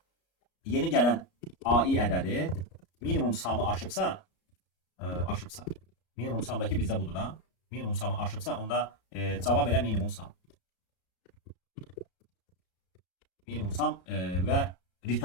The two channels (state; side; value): late; right; 33 ms